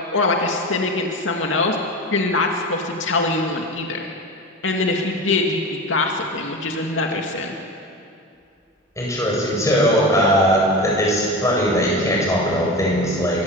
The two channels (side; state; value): both; normal; correlation 0.28